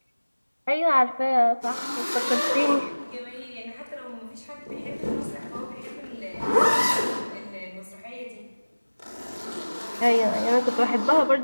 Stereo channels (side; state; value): both; inverted; correlation -1.00